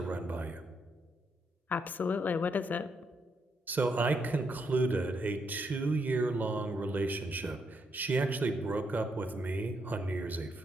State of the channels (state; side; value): normal; both; correlation 0.77